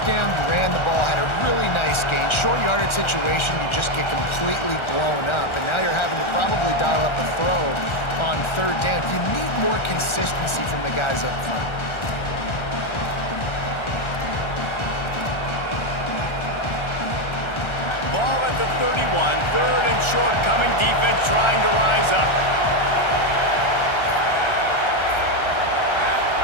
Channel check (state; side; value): late; right; 1.4 ms